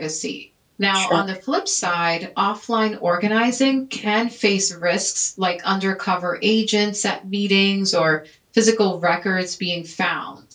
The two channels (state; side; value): identical; both; correlation 1.00